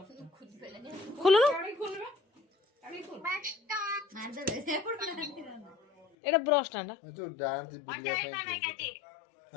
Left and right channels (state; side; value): drops out; right; at 6.1 s